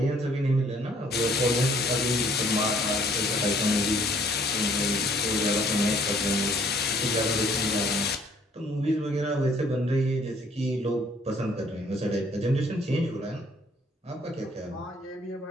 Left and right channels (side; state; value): both; normal; correlation 0.60